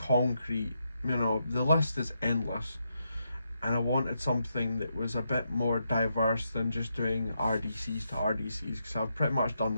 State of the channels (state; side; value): inverted; both; correlation -0.82